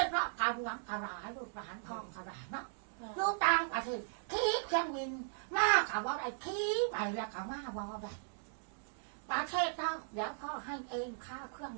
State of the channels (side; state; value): left; silent; digital silence